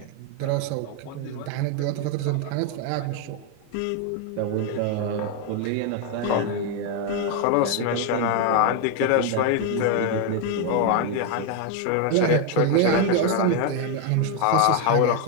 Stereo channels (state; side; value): different; both; correlation 0.01